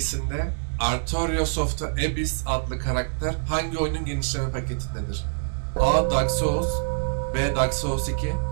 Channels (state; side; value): silent; left; digital silence